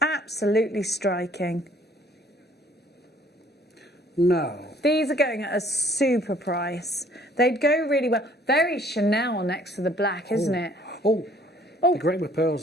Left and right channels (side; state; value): both; normal; correlation 0.58